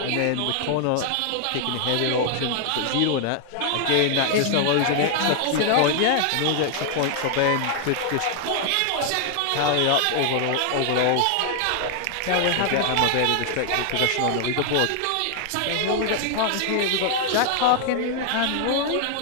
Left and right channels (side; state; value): both; different; correlation 0.00